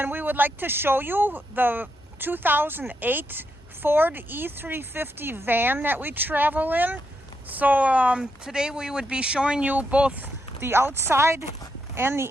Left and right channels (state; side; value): normal; both; correlation 0.81